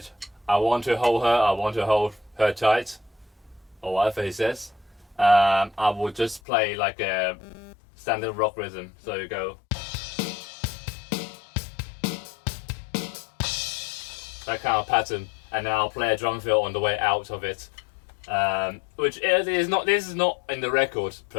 I want to hold her tight, or whatever he says, I will just play like a standard rock rhythm. So you go, that kind of pattern, and then I'll play a drum fill on the way out of it. Which is not in the record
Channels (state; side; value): drops out; right; at 6.4 s